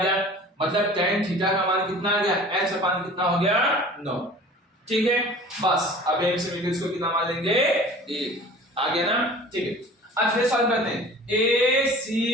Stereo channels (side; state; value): both; normal; correlation 0.44